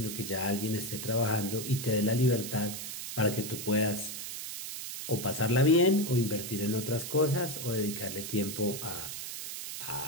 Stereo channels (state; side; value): noise; right; hiss, 7 dB below the sound